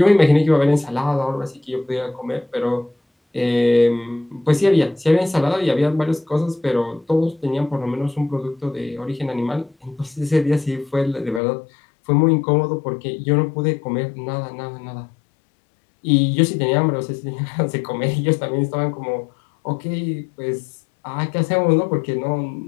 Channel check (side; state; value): right; drops out; at 11.4 s